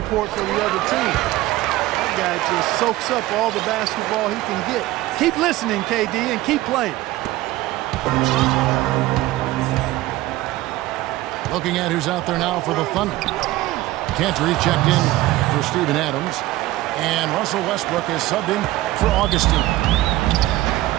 for the other team. That guy just soaks up all the basketball he can get. Keep listening, KD, and keep playing. Looking at who's out there now for the Thunder. Cantor checked in for Steven Adams. And Russell Westbrook is subbed in for Augustine.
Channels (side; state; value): left; quieter; 17.0 dB